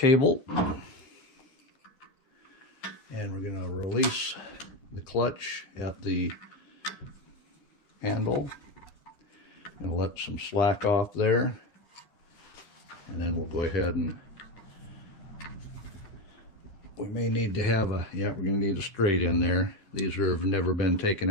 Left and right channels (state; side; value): late; right; 10 ms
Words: And we're going to release the clutch at the handle. And let some slack off there. And then we'll go ahead and we may need to have a, we're going to need a straight in there. These have never been taken